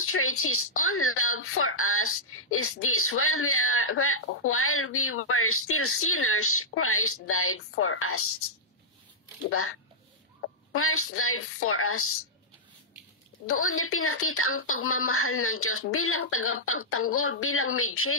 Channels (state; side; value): normal; both; correlation -0.09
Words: His own love for us is this: while we were still sinners, Christ died for us. Diba? Christ died for us. Doon niya pinakita ang pagmamahal ng Diyos bilang tagapagtanggol, bilang